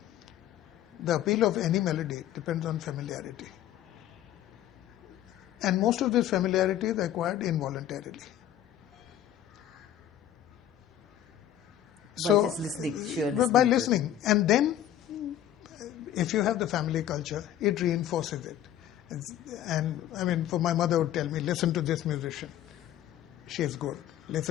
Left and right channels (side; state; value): right; quieter; 11.4 dB